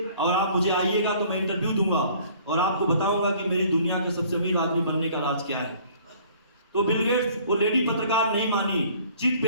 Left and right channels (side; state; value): both; inverted; correlation -0.55